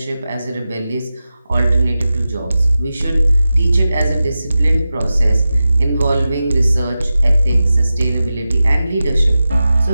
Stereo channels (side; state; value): both; inverted; correlation -0.94